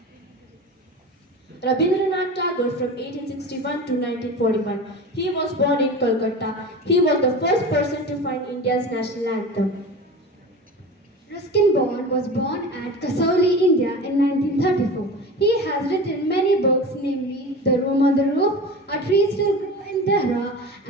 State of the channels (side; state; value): both; normal; correlation 0.32